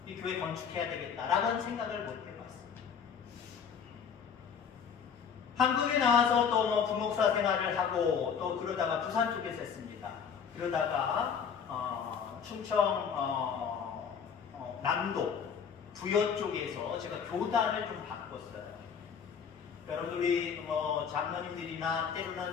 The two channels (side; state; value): right; quieter; 6.9 dB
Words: 이 교회 건축해야 되겠다라는 생각을 못 해봤습니다. 한국에 나와서 또 뭐 부목사 생활을 하고 또 그러다가 부산 쪽에서 했습니다. 그러다가 충청 남도 부여 쪽에서 제가 교단을 좀 바꿨어요. 여러분 우리 뭐 장로님들이나